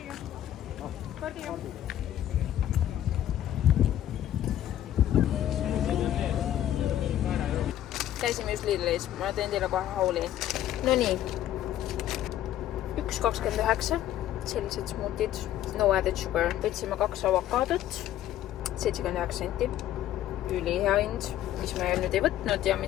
Käisime just Lidlis, ma teen teile kohe hauli. No nii, 1,29, sellised smootid, no added sugar. Võtsime 2 avokaadot, 79 senti, ülihea hind, mis me nüüd ei võtnud ja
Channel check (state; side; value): quieter; right; 12.1 dB